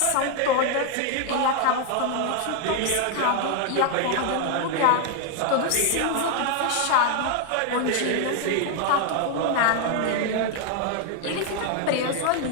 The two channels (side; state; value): both; different; correlation 0.00